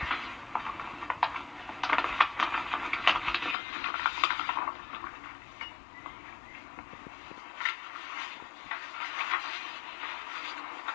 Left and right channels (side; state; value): right; drops out; at 3.6 s